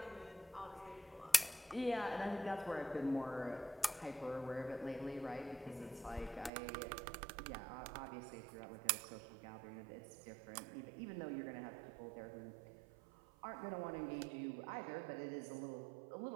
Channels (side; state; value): left; drops out; at 6.5 s